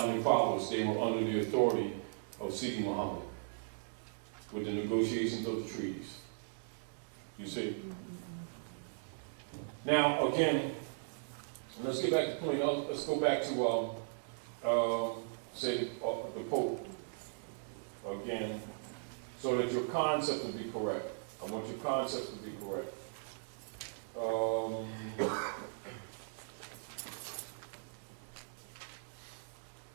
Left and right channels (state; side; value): silent; left; digital silence